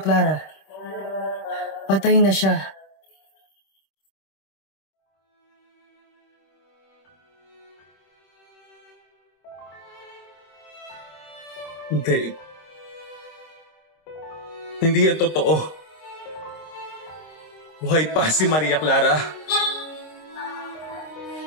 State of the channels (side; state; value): right; late; 26 ms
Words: Clara. Patay na siya. Hindi. Hindi yan totoo. Buhay pa si Maria Clara.